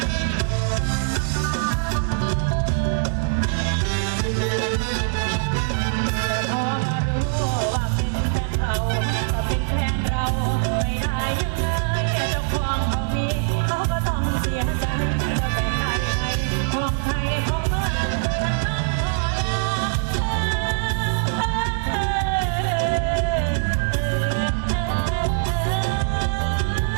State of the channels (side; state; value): left; silent; digital silence